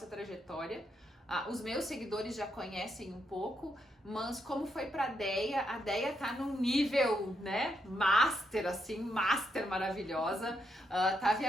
trajetória. Os meus seguidores já conhecem um pouco, mas como foi pra Deia? A Deia tá num nível, né, master, assim, master maravilhosa, tá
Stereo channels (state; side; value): normal; both; correlation 0.79